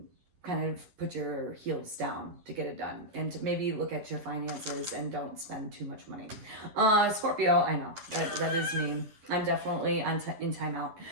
kind of put your heels down to get it done, and to maybe look at your finances and don't spend too much money. Scorpio, I know that is me. I'm definitely in timeout.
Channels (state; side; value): late; left; 11 ms